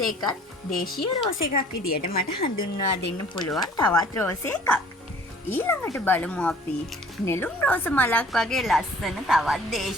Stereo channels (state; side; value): normal; both; correlation 0.52